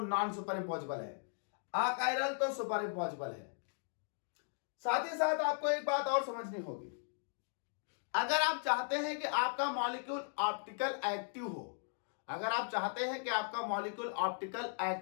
नॉन सुपर इम्पॉसिबल है, अकायरल तो सुपर इम्पॉसिबल है। साथ ही साथ आपको एक बात और समझनी होगी, अगर आप चाहते हैं कि आपका मॉलिक्यूल ऑप्टिकल एक्टिव हो, अगर आप चाहते हैं कि आपका मॉलिक्यूल ऑप्टिकल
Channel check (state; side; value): silent; right; digital silence